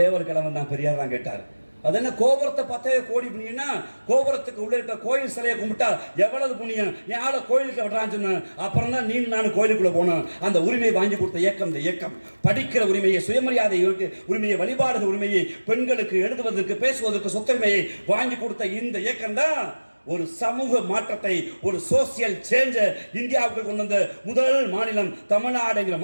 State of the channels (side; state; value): both; inverted; correlation -1.00